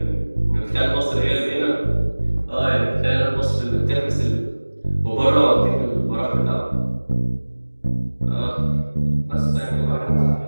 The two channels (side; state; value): both; inverted; correlation -1.00